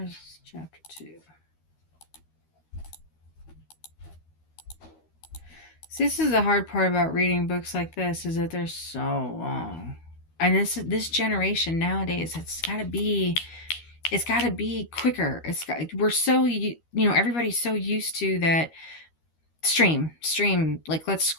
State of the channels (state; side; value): late; right; 13 ms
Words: is chapter 2? See, this is the hard part about reading books like this, is that they're so long. And this generation nowadays, it's got to be quicker. We're so, everybody's so used to that stream, like let's